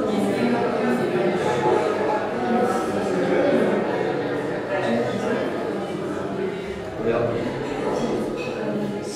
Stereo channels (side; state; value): both; identical; correlation 1.00